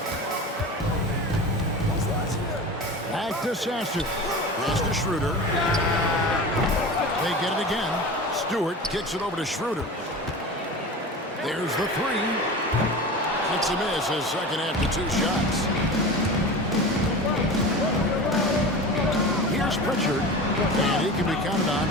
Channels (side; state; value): both; normal; correlation 0.32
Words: Back to Sasser. Pass to Schroeder. They get it again. Stewart kicks it over to Schroeder. There's the three. It's a miss his second after 2 shots. Here's Pritchard. And he can be counted on